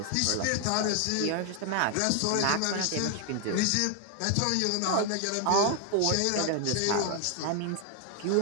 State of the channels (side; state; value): both; different; correlation 0.00